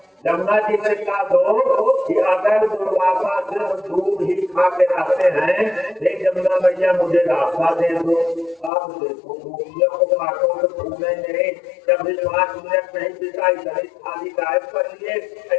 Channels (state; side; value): drops out; right; at 8.7 s